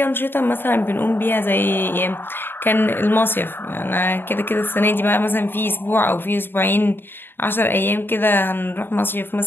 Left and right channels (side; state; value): right; late; 0.10 ms